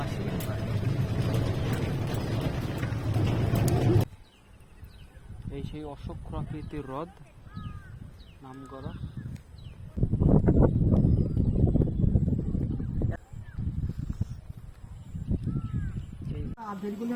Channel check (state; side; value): identical; both; correlation 1.00